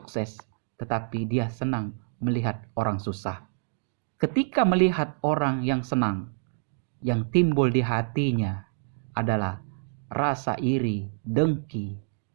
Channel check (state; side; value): silent; left; digital silence